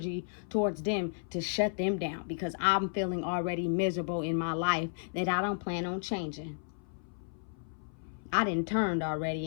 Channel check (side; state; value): right; silent; 56 dB below the other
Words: towards them to shut them down, because I'm feeling already miserable in my life that I don't plan on changing. I done turned